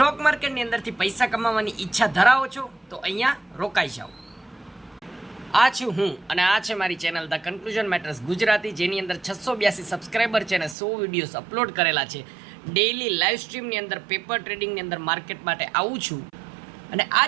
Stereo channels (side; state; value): left; drops out; at 10.8 s